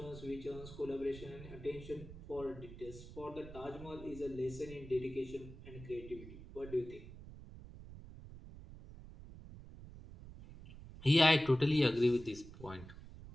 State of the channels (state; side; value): noise; right; rumble, 15 dB below the sound